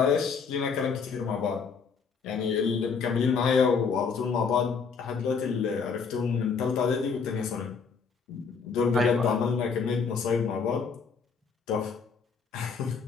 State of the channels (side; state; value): right; quieter; 5.6 dB